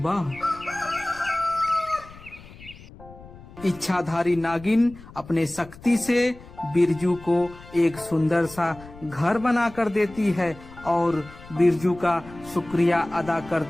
इच्छाधारी नागिन अपने शक्ति से बिरजू को एक सुंदर सा घर बना कर देती है और बिरजू का शुक्रिया अदा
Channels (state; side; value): noise; left; rumble, 19 dB below the sound